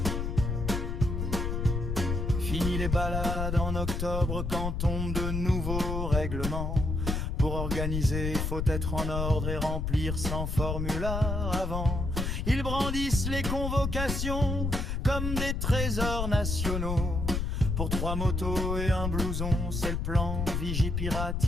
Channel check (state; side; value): noise; left; rumble, 1 dB below the sound